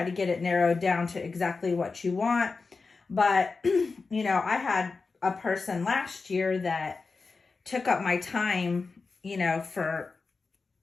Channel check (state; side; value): quieter; right; 4.3 dB